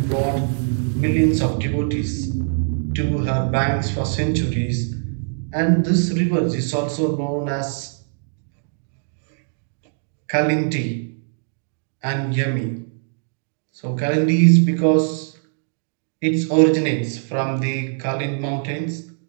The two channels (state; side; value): silent; left; digital silence